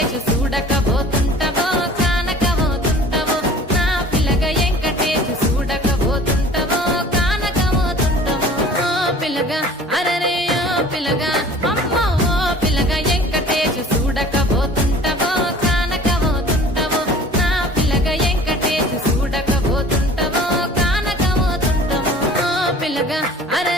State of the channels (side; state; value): both; normal; correlation 0.46